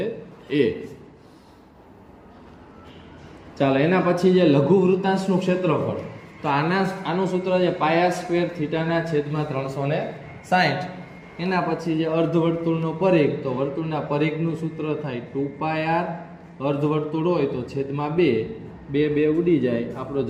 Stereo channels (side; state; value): both; identical; correlation 1.00